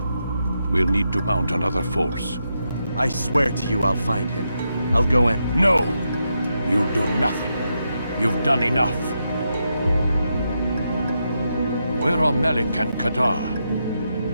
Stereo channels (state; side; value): inverted; both; correlation -0.84